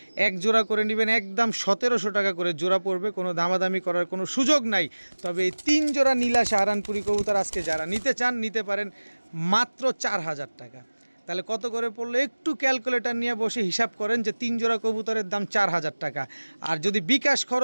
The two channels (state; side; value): inverted; both; correlation -1.00